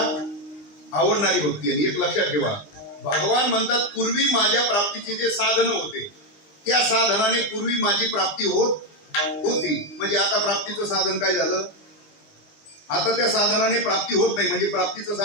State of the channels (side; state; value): right; late; 20 ms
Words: आवडणारी भक्ती. आणि एक लक्षात ठेवा भगवान म्हणतात पूर्वी माझ्या प्राप्तीचे जे साधन होते त्या साधनाने पूर्वी माझी प्राप्ती होती. म्हणजे आता प्राप्तीचं साधन काय झालं. आता त्या साधनाने प्राप्ती होत नाही म्हणजे प्राप्तीचं